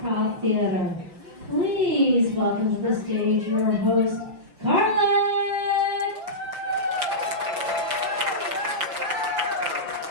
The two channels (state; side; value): late; left; 5.9 ms